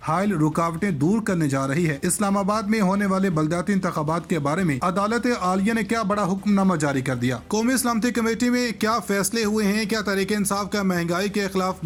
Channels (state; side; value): identical; both; correlation 1.00